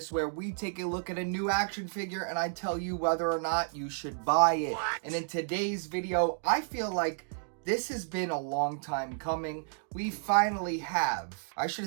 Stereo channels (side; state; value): left; silent; digital silence